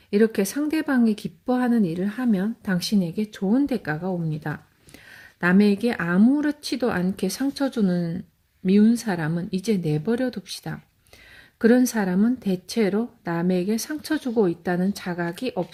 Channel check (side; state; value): both; identical; correlation 1.00